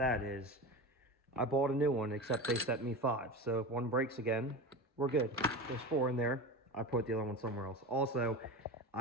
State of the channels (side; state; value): both; normal; correlation 0.27